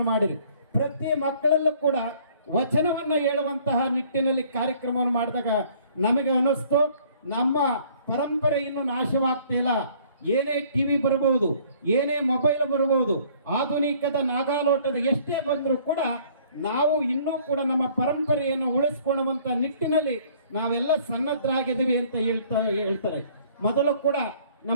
ಮಾಡಿದ್ರು. ಪ್ರತಿ ಮಕ್ಕಳಲ್ಲೂ ಕೂಡ ವಚನವನ್ನ ಹೇಳುವಂತಹ ನಿಟ್ಟಿನಲ್ಲಿ ಕಾರ್ಯಕ್ರಮವನ್ನು ಮಾಡಿದಾಗ ನಮಗೆ ಅನ್ನಿಸ್ತು ನಮ್ಮ ಪರಂಪರೆ ಇನ್ನು ನಾಶವಾಗ್ತಿಲ್ಲ. ಏನೇ ಟಿವಿ ಬರಬಹುದು, ಏನೇ ಮೊಬೈಲ್ ಬರಬಹುದು, ಆಧುನಿಕದ ನಾಗಾಲೋಟದ ಎಷ್ಟೇ ಬಂದರೂ ಕೂಡ ನಾವು ಇನ್ನೂ ಕೂಡ ನಮ್ಮ ಪರಂಪರೆಯನ್ನು ಉಳಿಸ್ಕೊಳ್ಳುವಂತ ನಿಟ್ಟಿನಲ್ಲಿ ನಾವೆಲ್ಲ ಸನ್ನದ್ಧರಾಗಿದ್ದೀವಿ ಅಂತ ಹೇಳ್ತಾರೆ. ಮೊದಲು ಕೂಡ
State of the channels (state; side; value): inverted; both; correlation -0.57